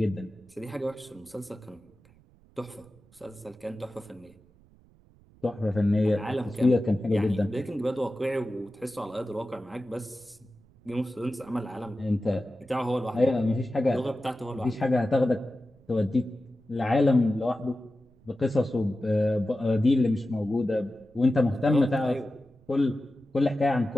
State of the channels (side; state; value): right; noise; rumble, 28 dB below the sound